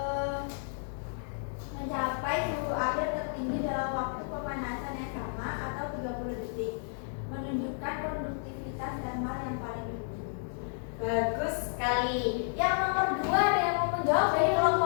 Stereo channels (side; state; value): right; silent; digital silence